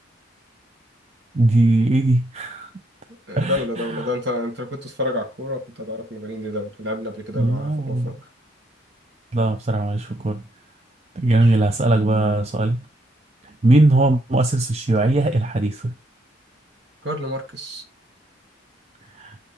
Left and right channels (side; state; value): both; normal; correlation 0.75